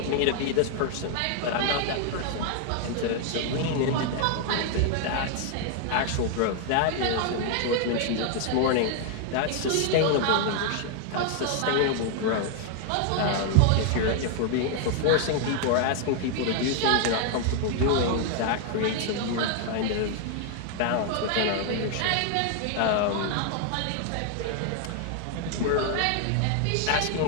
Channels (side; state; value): both; different; correlation 0.00